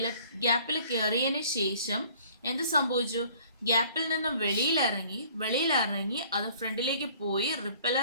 ഗ്യാപ്പിൽ കയറിയതിന് ശേഷം എന്ത് സംഭവിച്ചു? ഗ്യാപ്പിൽ നിന്നും വെളിയിലിറങ്ങി അത് ഫ്രണ്ടിലേക്ക് പോയി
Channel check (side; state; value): both; inverted; correlation -0.54